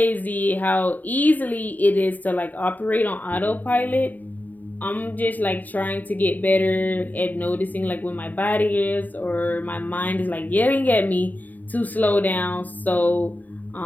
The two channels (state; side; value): late; right; 0.083 ms